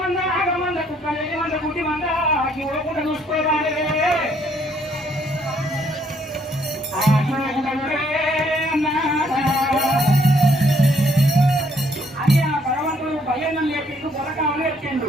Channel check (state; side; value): normal; both; correlation 0.67